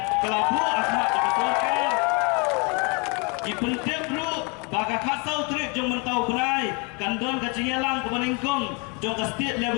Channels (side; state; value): right; quieter; 32.2 dB